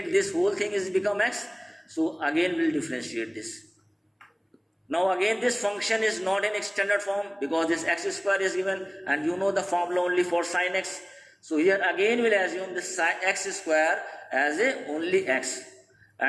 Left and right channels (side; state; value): both; identical; correlation 1.00